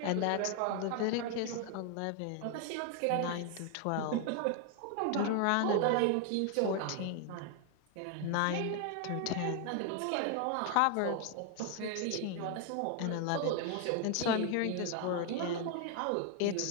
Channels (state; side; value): different; both; correlation 0.00